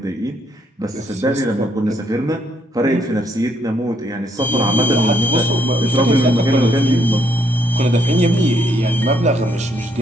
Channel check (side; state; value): both; normal; correlation 0.71